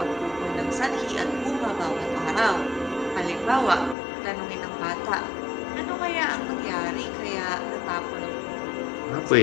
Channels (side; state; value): right; drops out; at 4.0 s